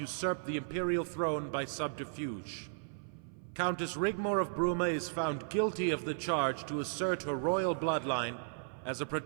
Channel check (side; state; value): left; silent; 54 dB below the other